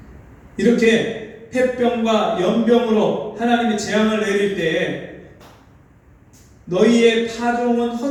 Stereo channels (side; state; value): both; identical; correlation 1.00